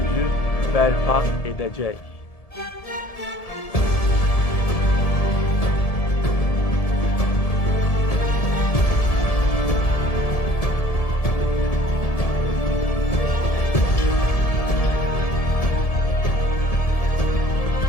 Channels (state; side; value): late; right; 1.7 ms